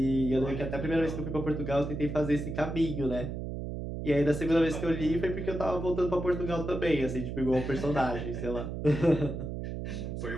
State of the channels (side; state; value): right; noise; hum, 5 dB below the sound